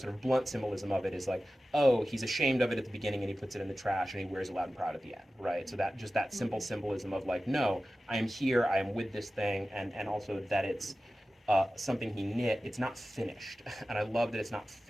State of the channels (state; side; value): normal; both; correlation 0.95